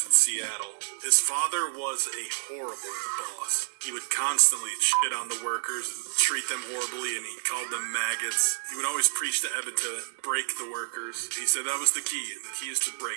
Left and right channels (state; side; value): silent; left; digital silence